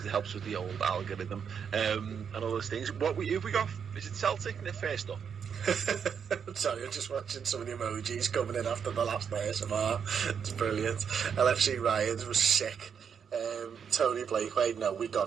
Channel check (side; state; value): left; quieter; 7.1 dB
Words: it helps with the old algorithm and all those things. What have we got? Is it Celtic in the first up? Sorry, I'm just watching some of the emojis coming in after the last ASMR. It's brilliant. LFC Ryans was sick. Tony Blakeway, no, we got